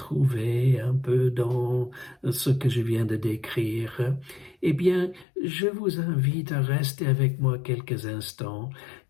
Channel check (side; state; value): right; drops out; at 5.2 s